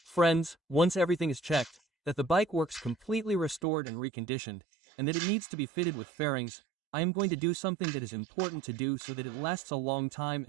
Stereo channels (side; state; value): left; drops out; at 3.6 s